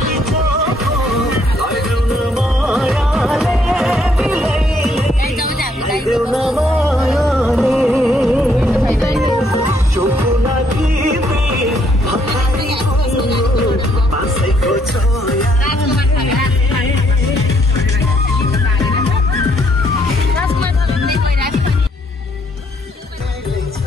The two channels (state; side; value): normal; both; correlation 0.69